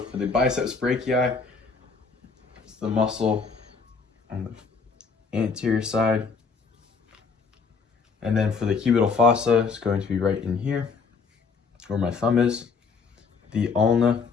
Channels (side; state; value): right; quieter; 5.0 dB